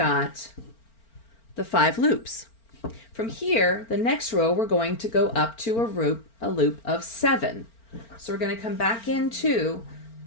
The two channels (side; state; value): right; late; 4.4 ms